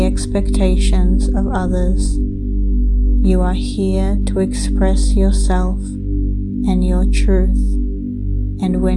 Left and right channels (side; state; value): both; identical; correlation 1.00